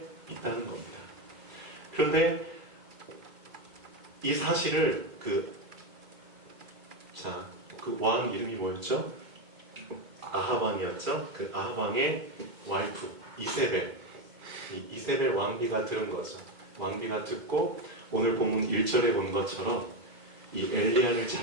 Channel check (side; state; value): left; late; 2.2 ms